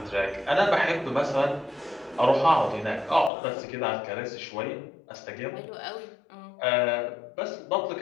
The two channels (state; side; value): drops out; right; at 3.3 s